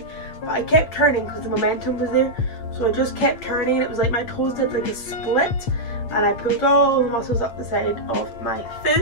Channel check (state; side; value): late; right; 8.5 ms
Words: but I kept turning because the momentum was there, so I just kept turning and it was like my toes did like a split and I pulled all the muscles up the side of my